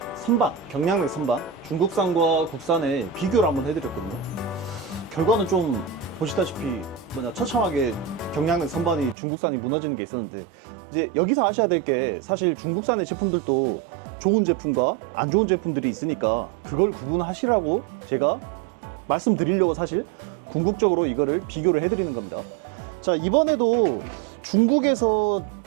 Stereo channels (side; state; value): left; drops out; at 9.2 s